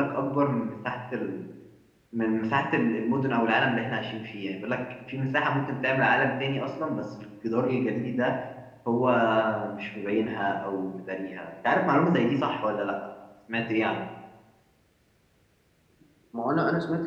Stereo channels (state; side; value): identical; both; correlation 1.00